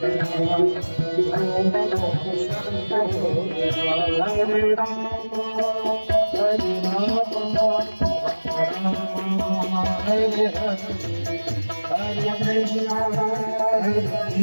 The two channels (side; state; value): both; inverted; correlation -1.00